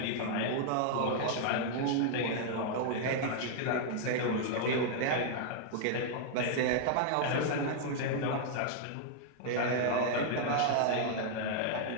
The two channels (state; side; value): different; both; correlation -0.01